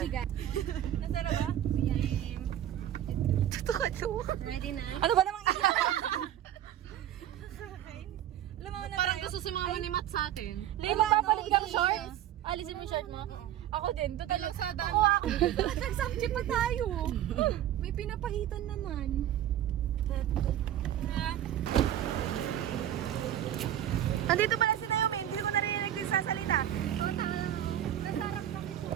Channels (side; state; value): left; quieter; 11.7 dB